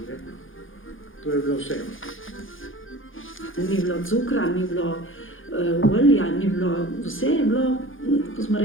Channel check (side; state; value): right; late; 0.58 ms